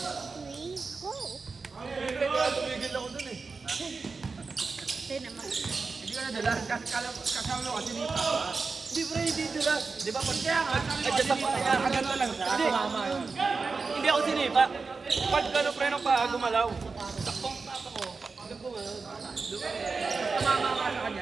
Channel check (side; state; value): left; quieter; 4.4 dB